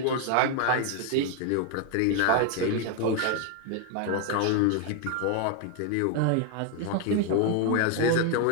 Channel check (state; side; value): different; both; correlation 0.00